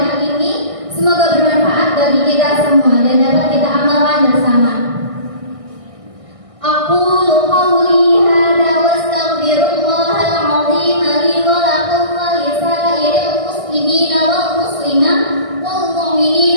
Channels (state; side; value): late; left; 1.6 ms